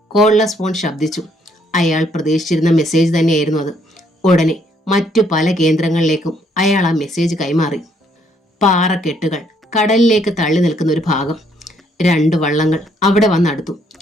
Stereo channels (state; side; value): normal; both; correlation 0.69